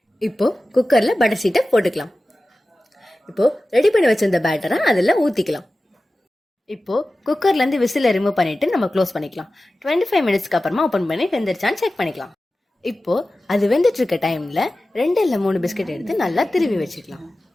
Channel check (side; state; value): both; normal; correlation 0.95